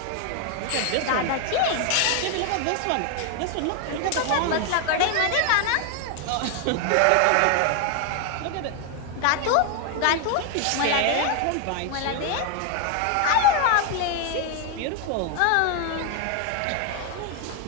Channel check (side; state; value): both; different; correlation 0.01